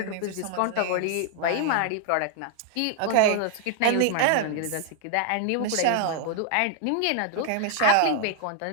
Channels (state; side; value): different; both; correlation 0.00